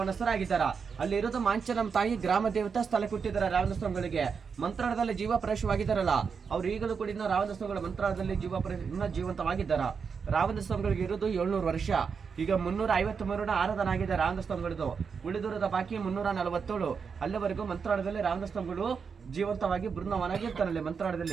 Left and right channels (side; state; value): left; quieter; 5.9 dB